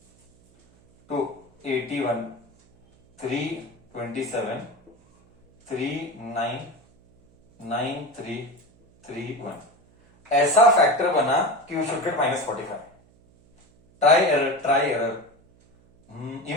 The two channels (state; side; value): noise; right; hum, 30 dB below the sound